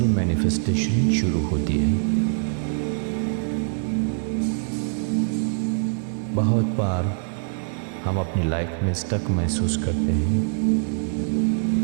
मैनिफेस्टेशन शुरू होती है। बहुत बार हम अपनी लाइफ में स्टक महसूस करते हैं।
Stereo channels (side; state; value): left; silent; 63 dB below the other